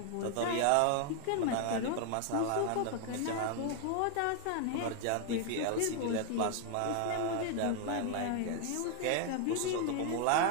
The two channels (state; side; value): different; both; correlation 0.00